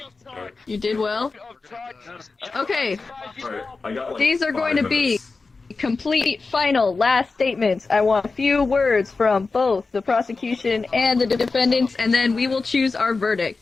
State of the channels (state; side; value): quieter; right; 4.1 dB